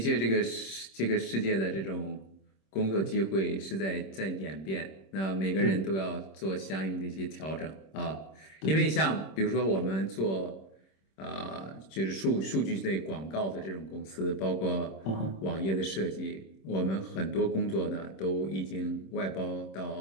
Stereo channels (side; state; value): right; late; 26 ms